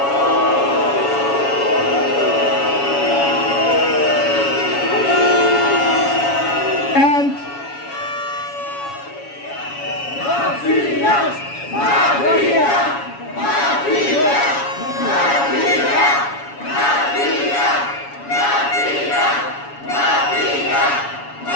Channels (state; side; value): late; right; 7.1 ms